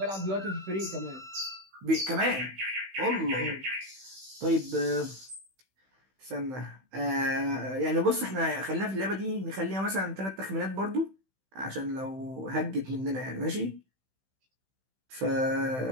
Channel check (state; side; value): late; left; 15 ms